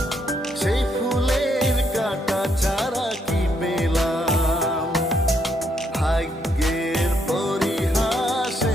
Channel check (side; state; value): both; normal; correlation 0.75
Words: সেই ফুলের কাঁটা ছাড়া কি পেলাম। ভাগ্যের